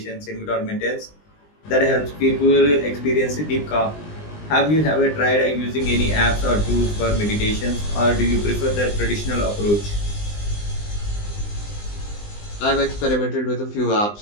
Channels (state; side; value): late; right; 20 ms